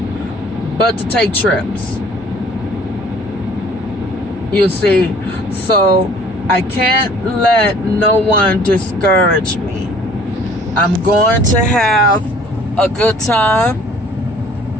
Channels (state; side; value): normal; both; correlation 0.54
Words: but to take trips. You see, so I can't let no one discourage me. I'm going to have a good time.